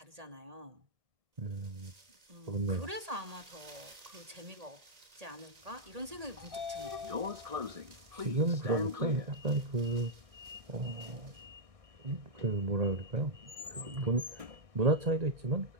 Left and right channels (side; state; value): left; late; 1.8 ms